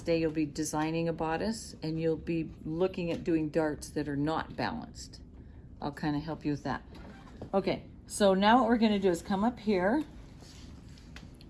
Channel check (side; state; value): both; identical; correlation 1.00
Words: day, you'll be designing a bodice, and you'll be looking at doing darts that are not balanced. I'll kind of help you with that. Okay, so now what we're gonna do is come up here,